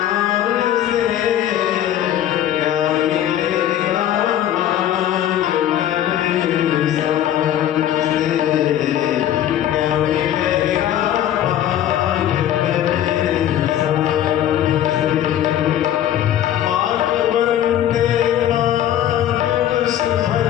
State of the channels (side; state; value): right; quieter; 11.4 dB